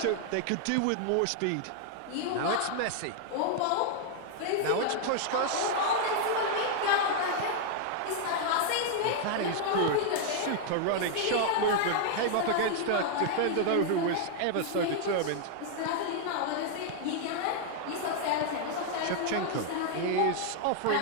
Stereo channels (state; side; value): different; both; correlation 0.00